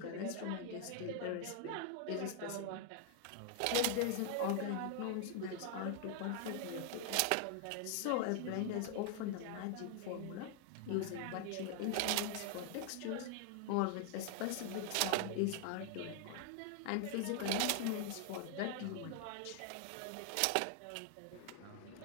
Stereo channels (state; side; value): different; both; correlation 0.00